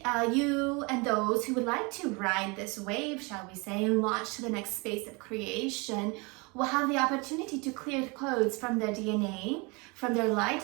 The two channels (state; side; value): quieter; left; 28.7 dB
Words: you and those who would like to ride this wave, shall we say, and launch to the next space of creation, will have the opportunity to clear codes from their DNA, from their